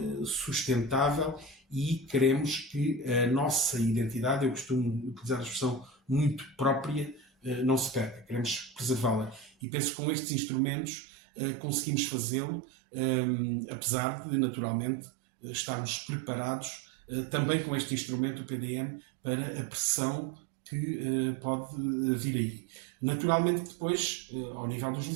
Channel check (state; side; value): drops out; left; at 9.5 s